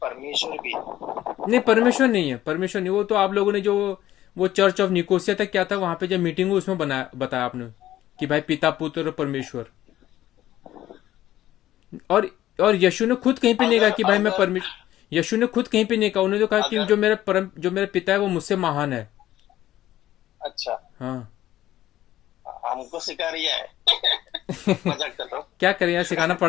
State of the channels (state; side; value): quieter; right; 13.6 dB